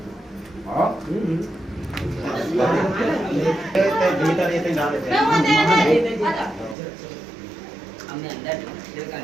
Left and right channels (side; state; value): left; drops out; at 6.8 s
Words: हां भीतर ये डाल देते हैं हमने अंदर का